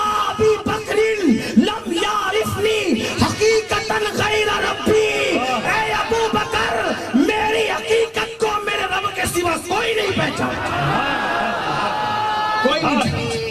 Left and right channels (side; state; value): both; identical; correlation 1.00